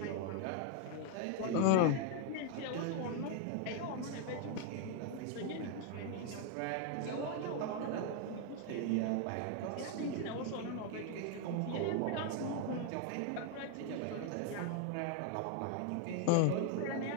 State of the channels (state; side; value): different; both; correlation 0.00